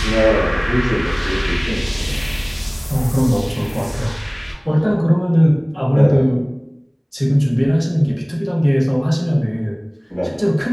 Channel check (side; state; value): both; identical; correlation 1.00